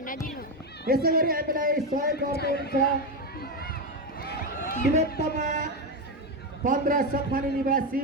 हामीलाई सहयोग गर्नुहुन्छ तिलोत्तमा 15 सफानी निवासी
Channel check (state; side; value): normal; both; correlation 0.10